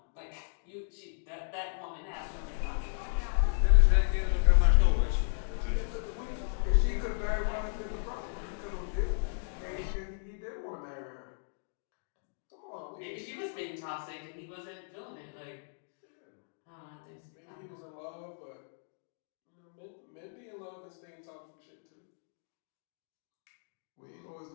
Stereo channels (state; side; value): silent; right; digital silence